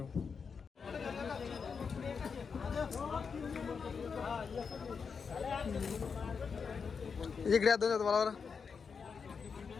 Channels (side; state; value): right; quieter; 5.7 dB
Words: इकडे या दोन तुम्हाला